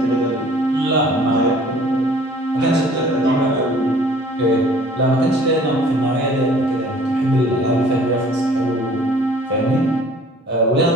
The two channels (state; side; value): normal; both; correlation 0.52